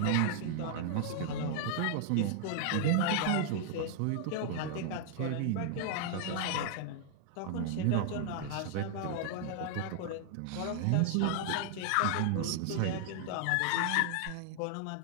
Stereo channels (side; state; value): both; different; correlation 0.00